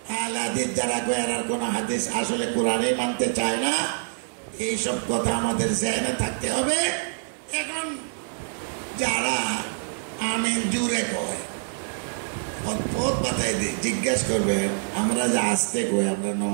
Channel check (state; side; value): silent; left; 57 dB below the other